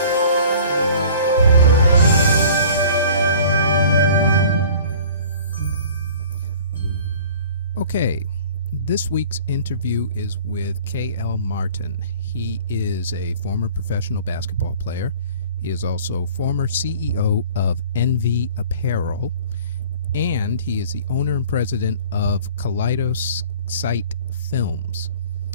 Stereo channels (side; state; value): both; inverted; correlation -0.47